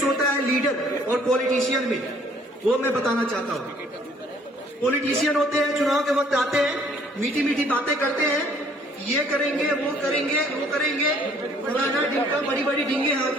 होता है लीडर और पॉलिटिशियन में, वो मैं बताना चाहता हूँ। पॉलिटिशियन होते हैं, चुनाव के वक्त आते हैं, मीठी मीठी बातें करते हैं, ये करेंगे वो करेंगे वो करेंगे, फलाना ढिमका बड़ी बड़ी ढींगे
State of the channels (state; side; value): normal; both; correlation 0.60